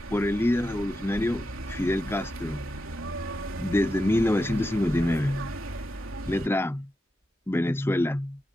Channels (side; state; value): both; normal; correlation 0.88